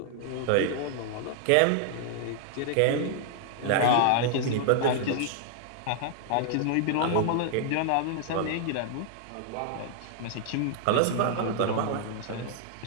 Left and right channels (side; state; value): both; different; correlation -0.01